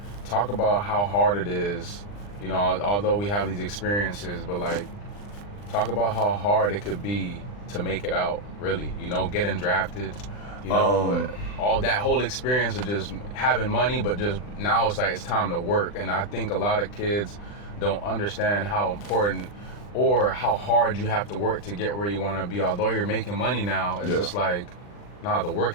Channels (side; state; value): right; late; 39 ms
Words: talk about how hard it is, you know, although we have these experiences, but like talk about how hard it could be to make it out, really, you know, getting drafted, you know, all that whole experience of just having money, but just now it's like it's time to work. And I think a lot of kids don't understand how important or how hard you have to work to get where you want to be. Although you're making money now, it's just like, nah, the work